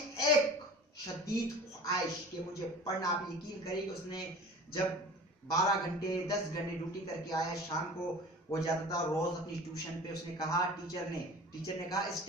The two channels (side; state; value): both; normal; correlation 0.40